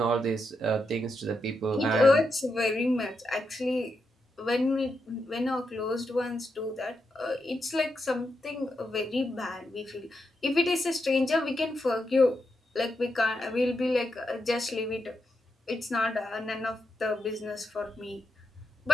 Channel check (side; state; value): both; normal; correlation 0.84